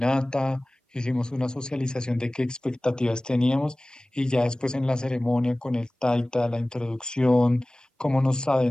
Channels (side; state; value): both; normal; correlation 0.98